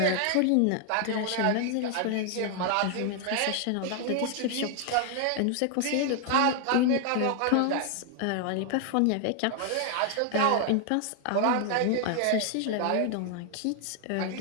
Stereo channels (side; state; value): both; different; correlation 0.00